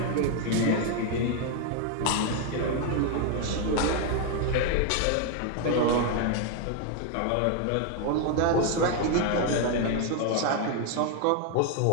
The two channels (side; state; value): both; different; correlation 0.01